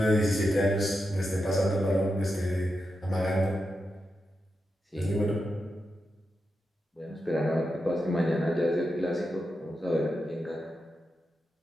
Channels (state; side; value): normal; both; correlation 0.88